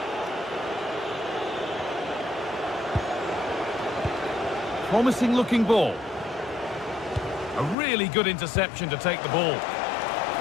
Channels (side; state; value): right; drops out; at 7.8 s